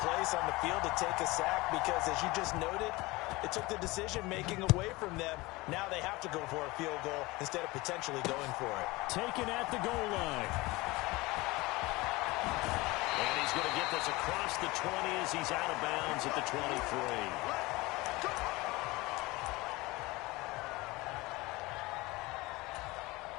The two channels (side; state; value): right; quieter; 21.9 dB